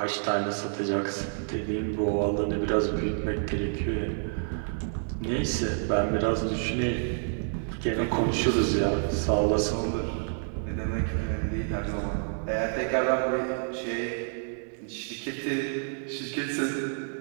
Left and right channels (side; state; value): left; silent; digital silence